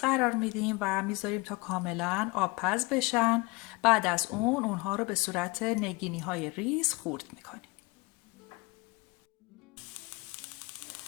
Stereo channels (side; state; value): right; quieter; 25.3 dB